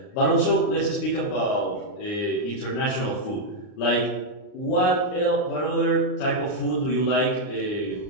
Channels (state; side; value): late; right; 39 ms